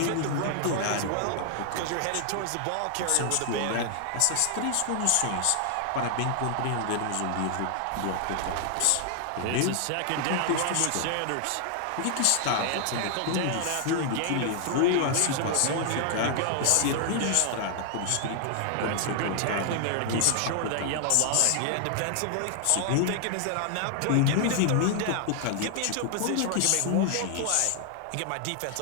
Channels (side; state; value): both; different; correlation 0.00